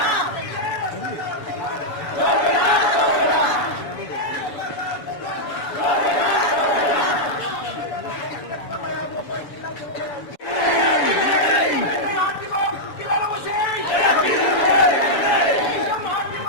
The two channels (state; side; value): late; right; 7.0 ms